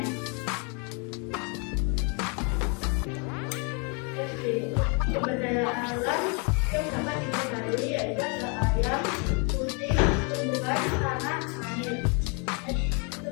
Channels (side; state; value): right; quieter; 34.6 dB